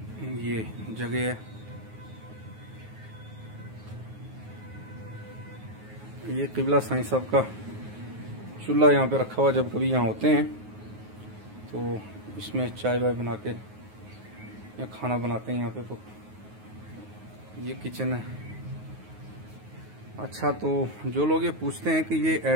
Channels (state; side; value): late; left; 9.4 ms